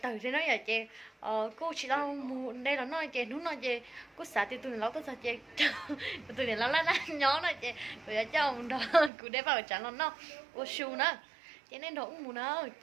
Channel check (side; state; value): left; drops out; at 9.1 s